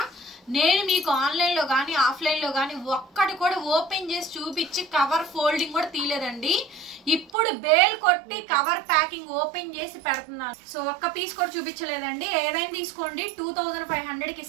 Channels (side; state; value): left; drops out; at 7.3 s